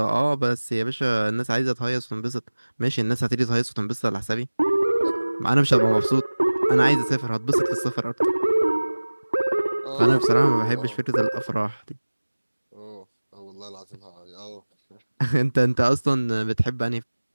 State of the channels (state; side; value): inverted; both; correlation -1.00